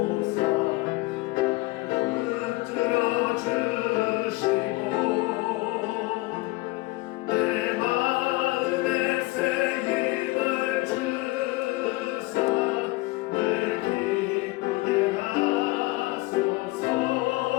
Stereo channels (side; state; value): right; quieter; 21.9 dB